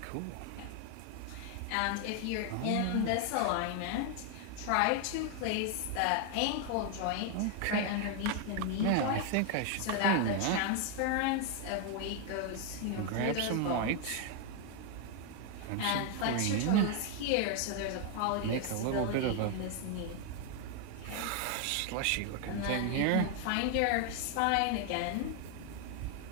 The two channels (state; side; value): different; both; correlation 0.01